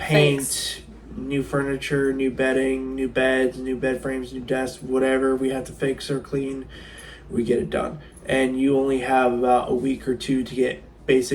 fix. New furniture, new bedding, new beds, new bed frames, new desks, whatever we have to fix or clean, we get it done. And you only have about a week or two to get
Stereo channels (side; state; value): both; identical; correlation 1.00